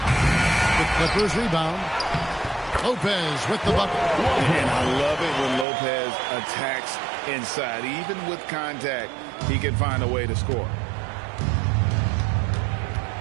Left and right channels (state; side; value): drops out; left; at 5.7 s